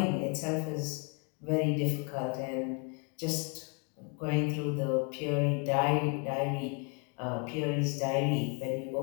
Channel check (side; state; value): right; quieter; 36.2 dB